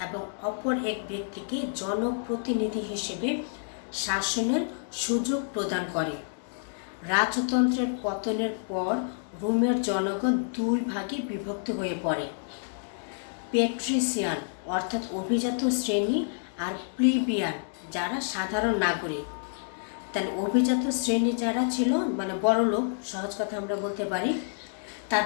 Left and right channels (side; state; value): right; silent; digital silence